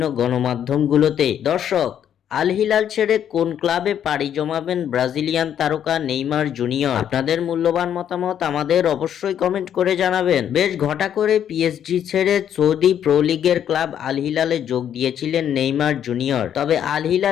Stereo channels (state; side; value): quieter; right; 9.6 dB